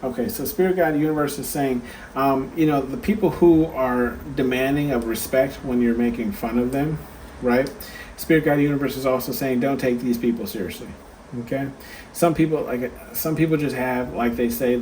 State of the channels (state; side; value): identical; both; correlation 1.00